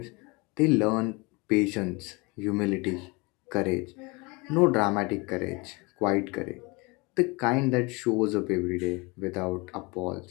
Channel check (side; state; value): right; quieter; 26.8 dB